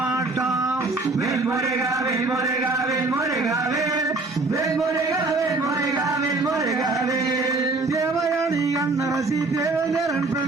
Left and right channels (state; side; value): quieter; left; 3.2 dB